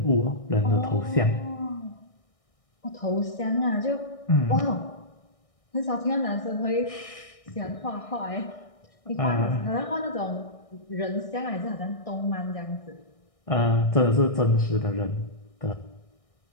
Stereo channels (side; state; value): right; late; 1.6 ms